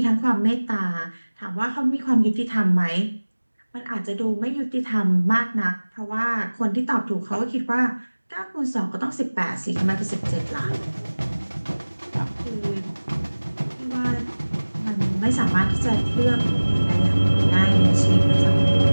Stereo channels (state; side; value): inverted; both; correlation -1.00